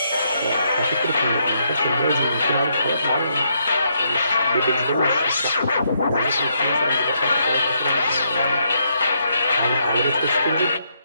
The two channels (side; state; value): both; inverted; correlation -0.76